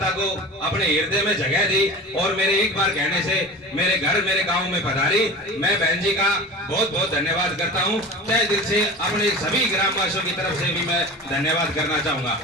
को अपने हृदय में जगह दी और मेरे एक बार कहने से मेरे घर मेरे गांव में पधारी। मैं बहन जी का बहुत बहुत धन्यवाद करता हूं। तहे दिल से अपने सभी ग्रामवासियों की तरफ से भी मैं धन्यवाद करना चाहूंगा।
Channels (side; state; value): both; normal; correlation 0.33